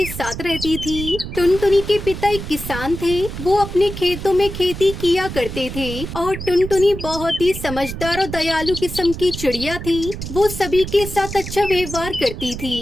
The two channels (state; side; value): noise; right; rumble, 8 dB below the sound